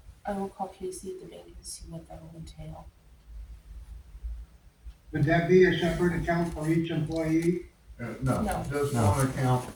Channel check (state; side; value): identical; both; correlation 1.00